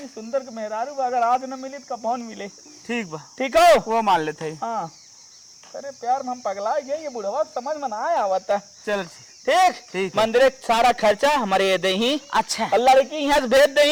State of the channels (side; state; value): both; identical; correlation 1.00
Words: सुंदर मेहरारू अगर आज न मिली तो कौन मिले। ठीक बा, ठीक हो। वो मान लेते ही। हाँ अरे प्यार में हम पगला गए, ये बुढ़वा समझ में ना आया आवता। चल ठीक ठीक है। मंदिर सारा खर्चा हमारे ये दे ही। अच्छा और लड़की यहाँ से भेज दे